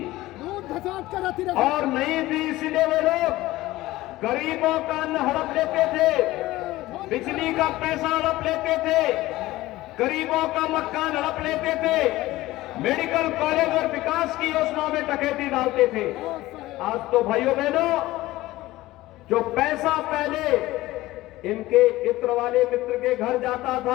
और नहीं थी, इसलिए वे लोग गरीबों का अन्न हड़प लेते थे, बिजली का पैसा हड़प लेते थे, गरीबों का मकान हड़प लेते थे, मेडिकल कॉलेज और विकास की योजनाओं में डकैती डालते थे। आज तो भाइयों बहनों, जो पैसा पहले इनके इत्र वाले मित्र के घर जाता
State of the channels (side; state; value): right; quieter; 17.5 dB